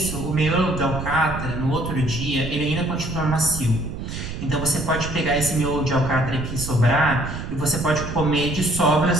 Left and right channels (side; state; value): right; noise; rumble, 7 dB below the sound